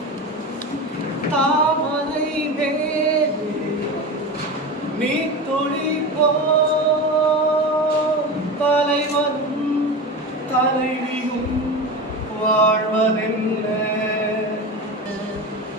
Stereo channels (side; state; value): both; normal; correlation 0.26